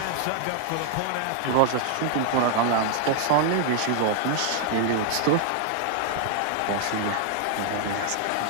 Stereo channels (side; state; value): both; different; correlation 0.00